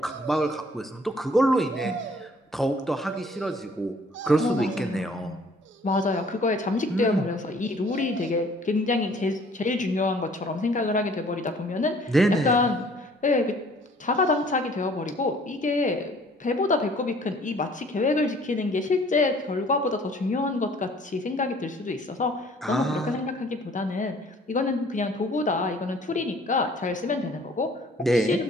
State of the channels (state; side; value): normal; both; correlation 0.56